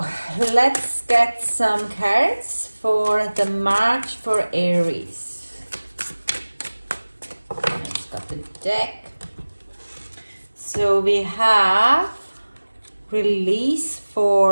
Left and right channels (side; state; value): both; inverted; correlation -1.00